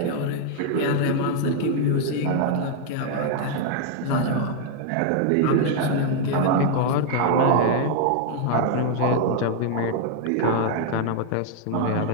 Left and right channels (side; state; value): both; different; correlation 0.00